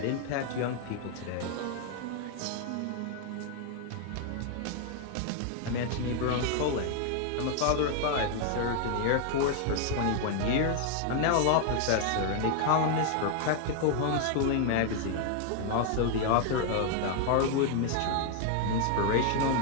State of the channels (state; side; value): different; both; correlation 0.00